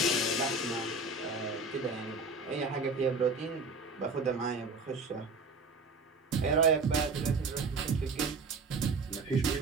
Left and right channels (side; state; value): left; quieter; 3.7 dB